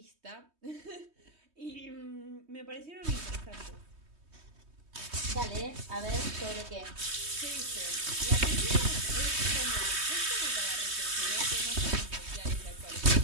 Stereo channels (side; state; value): left; late; 3.2 ms